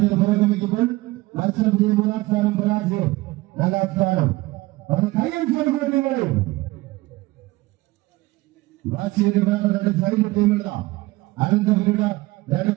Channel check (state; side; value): quieter; left; 20.1 dB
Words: പുരോഗമിക്കുമ്പോൾ മത്സരം വിജയം 3-ാം സ്ഥാനം, പരാജയം 4-ാം സ്ഥാനം. അവരുടെ കൈയടിച്ചുകൊടുക്കുന്ന ടീമുകളിൽ വാശിയേറിയ പോരാട്ടം 2 സൈഡ് ടീമുകളാണ്. അനന്തപുരിയുടെ 2